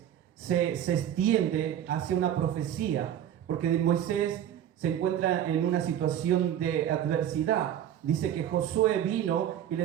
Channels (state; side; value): quieter; left; 10.5 dB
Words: se extiende hacia una profecía, porque Moisés se encuentra en una situación de adversidad. Dice que Josué vino y